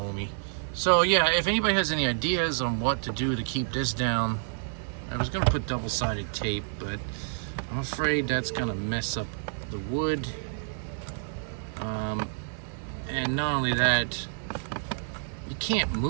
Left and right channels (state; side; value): silent; left; 59 dB below the other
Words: So yeah, if anybody has any ideas on what to do to keep this down, I was gonna put double-sided tape, but I'm afraid that's gonna mess up the wood. And not only that, you can't